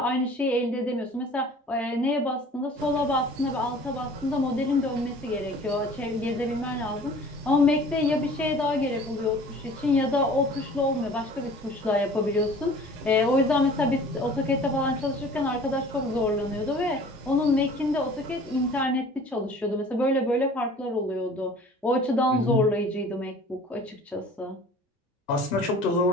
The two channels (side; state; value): both; normal; correlation 0.47